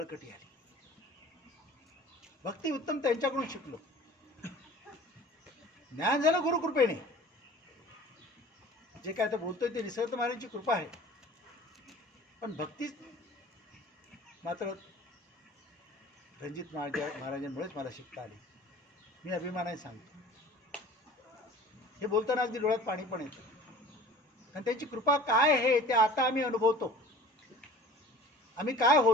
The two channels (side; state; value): both; normal; correlation 0.44